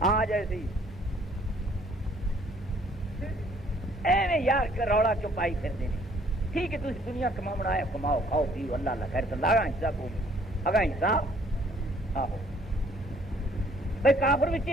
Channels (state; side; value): normal; both; correlation 0.61